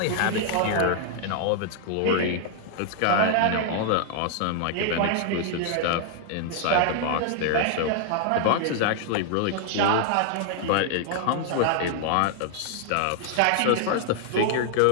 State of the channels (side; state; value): both; different; correlation 0.00